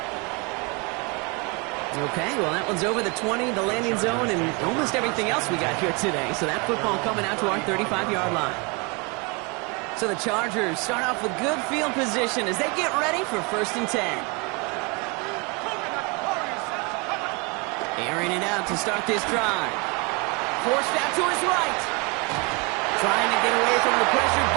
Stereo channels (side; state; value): left; quieter; 30.2 dB